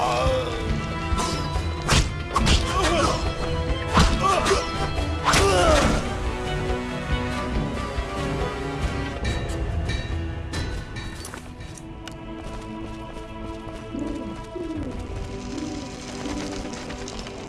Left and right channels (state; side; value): identical; both; correlation 1.00